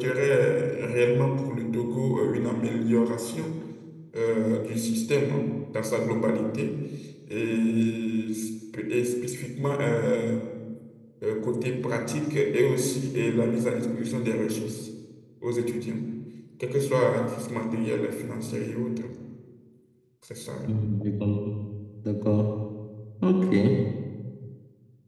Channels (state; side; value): identical; both; correlation 1.00